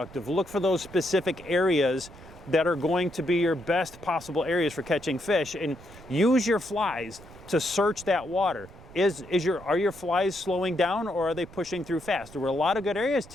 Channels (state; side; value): noise; right; rumble, 19 dB below the sound